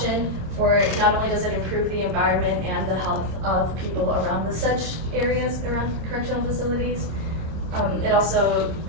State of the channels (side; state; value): left; late; 26 ms